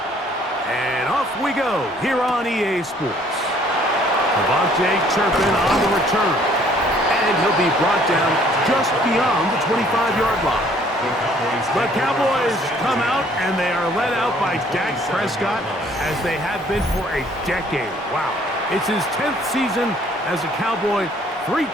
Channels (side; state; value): both; normal; correlation 0.60